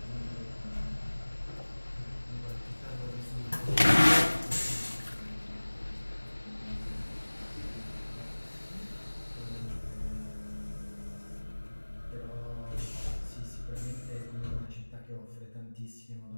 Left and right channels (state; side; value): inverted; both; correlation -1.00